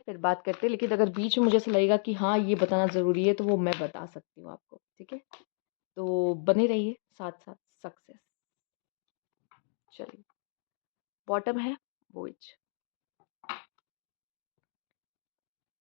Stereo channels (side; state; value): right; silent; digital silence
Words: फिर बात करते हैं, लेकिन अगर बीच में मुझे ऐसा लगेगा कि हाँ ये बताना ज़रूरी है तो वो मैं बता सकती हूँ आपको, ठीक है। तो बने रहिए साथ साथ। सक्सेस, चलिए। बॉटम है voyage.